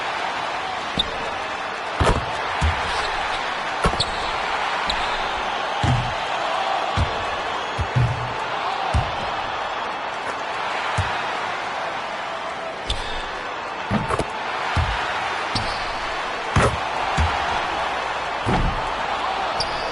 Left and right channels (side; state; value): both; identical; correlation 1.00